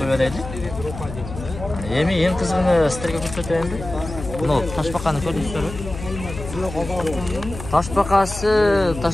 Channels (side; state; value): left; noise; hum, 10 dB below the sound